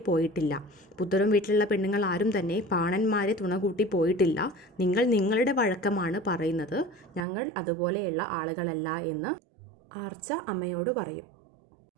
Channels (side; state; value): left; drops out; at 7.2 s